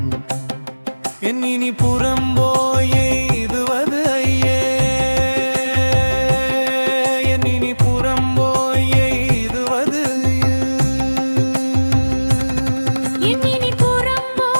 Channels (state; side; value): inverted; both; correlation -1.00